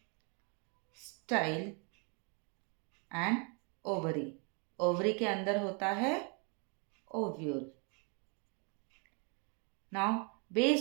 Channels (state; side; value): quieter; left; 35.9 dB